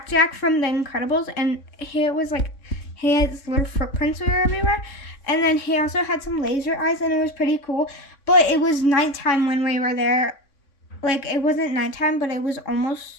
from The Incredibles, and he had his little footprints were everywhere. And then he also had some laser eyes, and it was pretty cool. But it was nighttime when we were there. Like, it wasn't nighttime, but it was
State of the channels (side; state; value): right; late; 3.6 ms